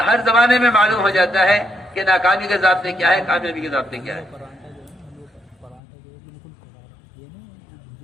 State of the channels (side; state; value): right; drops out; at 5.8 s